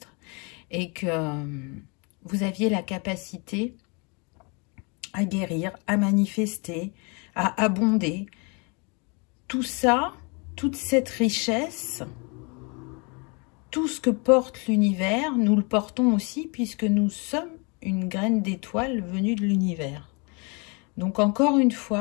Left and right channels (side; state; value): right; quieter; 32.1 dB